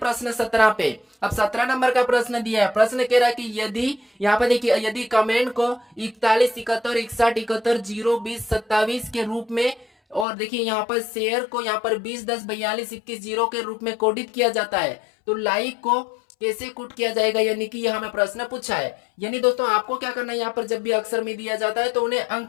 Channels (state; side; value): drops out; right; at 10.2 s